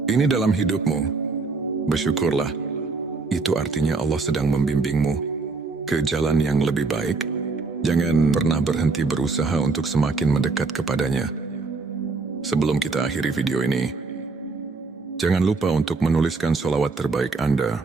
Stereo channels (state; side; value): quieter; left; 4.1 dB